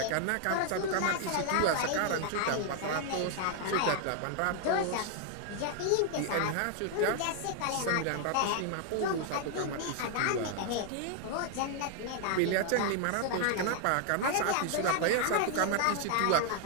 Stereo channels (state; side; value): different; both; correlation 0.00